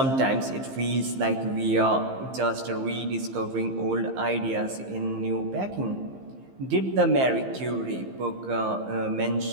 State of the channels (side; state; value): left; late; 15 ms